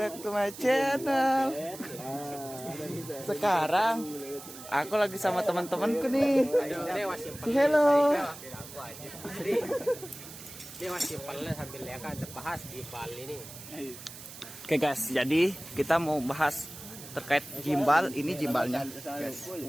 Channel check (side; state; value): right; noise; hiss, 14 dB below the sound